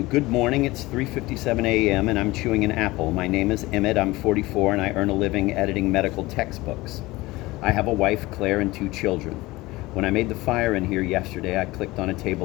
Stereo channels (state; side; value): quieter; right; 20.1 dB